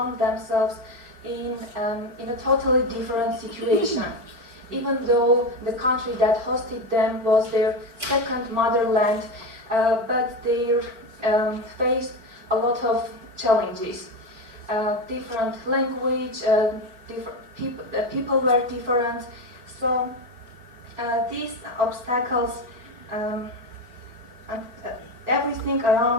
themselves in a totally different situation. Even though the country that hosted them was their second motherland, but they faced a lot of challenges. Different language, people were different, so these obstacles and everything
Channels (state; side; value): late; left; 4.4 ms